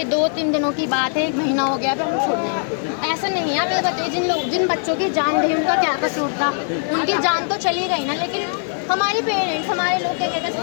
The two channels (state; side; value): silent; right; 59 dB below the other